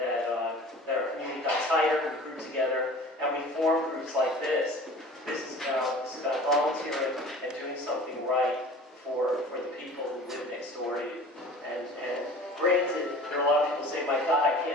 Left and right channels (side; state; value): both; normal; correlation 0.42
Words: our community got tighter, we grew together, and we formed groups like this. This is about volunteering and doing something right for the people who live next door to you. And granted, there are a lot of people say, my God,